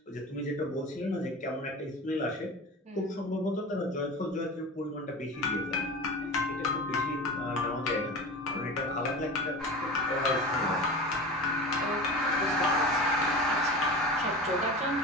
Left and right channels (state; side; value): normal; both; correlation 0.31